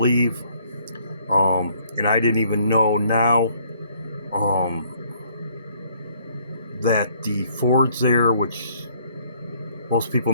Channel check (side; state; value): both; inverted; correlation -0.63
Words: And I didn't even know now that the Fords there, which most people